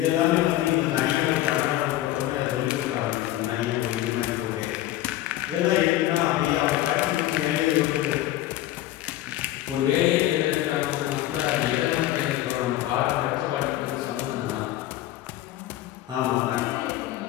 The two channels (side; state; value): right; quieter; 14.6 dB